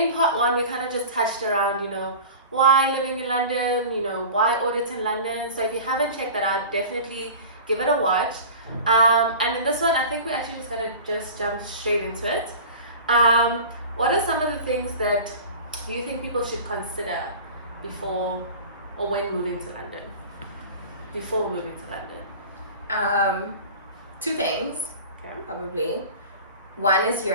part 1 we kind of just touched around, why living in London, why audit in London. So if you haven't checked that out, definitely give it a watch. And in this one, I think we're actually just gonna jump straight into it. What are some of the things that you think people should consider before or when moving to London? Before moving to London? 2 things, Okay. probably. One is your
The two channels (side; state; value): both; inverted; correlation -0.37